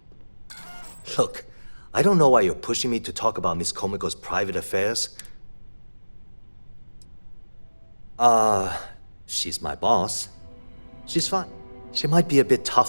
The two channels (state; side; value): inverted; both; correlation -1.00